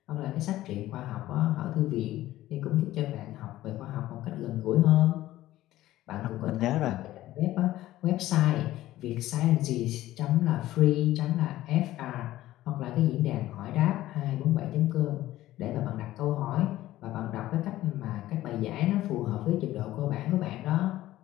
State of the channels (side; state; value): right; quieter; 15.2 dB